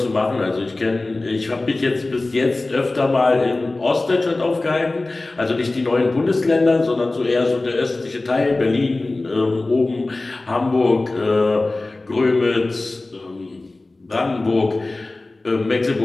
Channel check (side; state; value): right; quieter; 3.1 dB